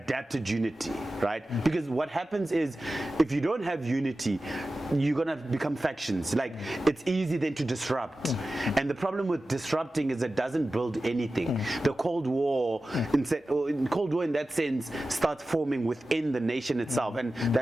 unity, right? Because what happens is, if you don't have unity, you're gonna become factions. Like, it's easy then to disrupt, and the problem with disrupting is it doesn't build anything. The Cold War, in that sense, starts forming within the nation itself, and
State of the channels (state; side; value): normal; both; correlation 0.94